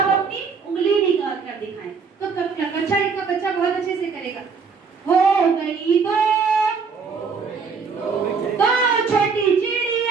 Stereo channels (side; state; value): left; quieter; 5.3 dB